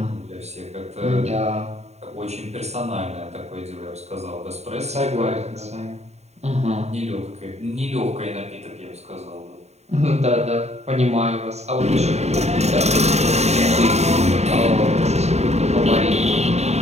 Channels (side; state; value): left; late; 0.32 ms